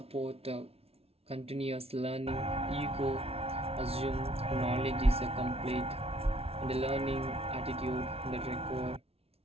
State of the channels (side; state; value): left; late; 0.29 ms